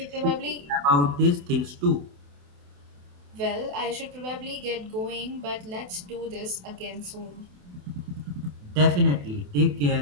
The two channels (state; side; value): late; left; 28 ms